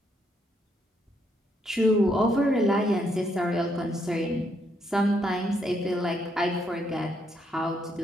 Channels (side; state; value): both; normal; correlation 0.74